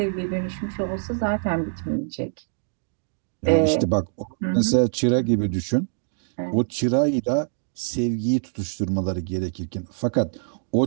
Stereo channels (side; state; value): left; silent; digital silence